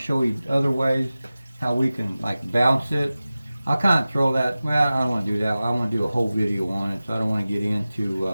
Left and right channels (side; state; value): both; inverted; correlation -0.96